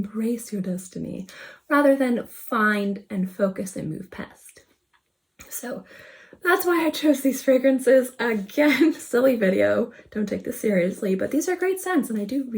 your destiny, rather than find and focus and move past. So that's why I chose these fragrances. Again, silly video, don't take this seriously, but these are great scents and I do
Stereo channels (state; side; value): identical; both; correlation 1.00